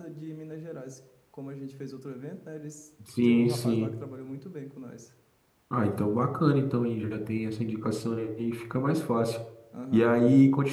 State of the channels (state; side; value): identical; both; correlation 1.00